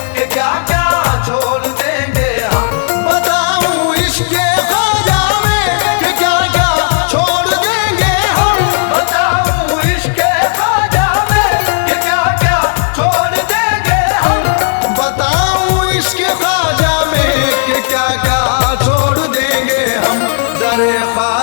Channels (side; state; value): right; silent; digital silence